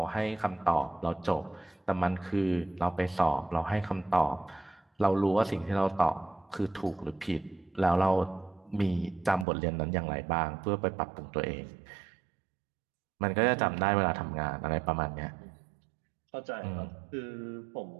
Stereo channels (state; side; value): drops out; left; at 9.5 s